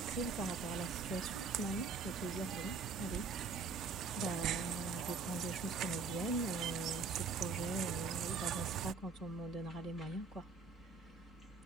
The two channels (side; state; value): left; quieter; 4.7 dB